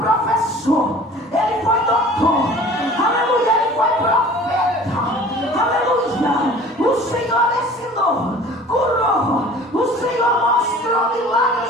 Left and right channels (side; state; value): both; normal; correlation 0.46